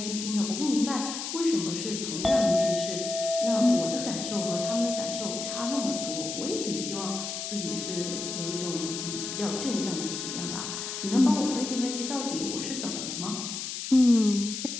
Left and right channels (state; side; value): noise; left; hiss, 5 dB below the sound